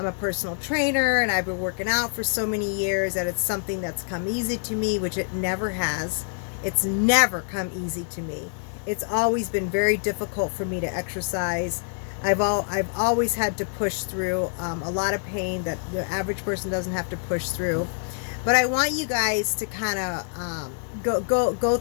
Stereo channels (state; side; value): silent; right; digital silence